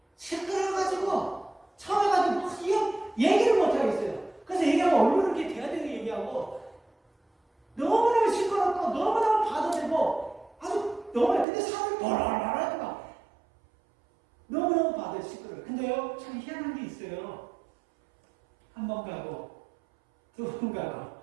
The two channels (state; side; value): drops out; left; at 11.5 s